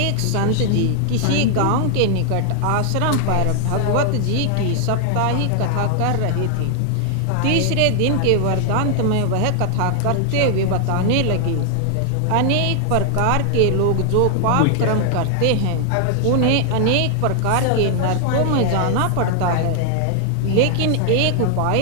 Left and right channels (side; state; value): both; different; correlation 0.00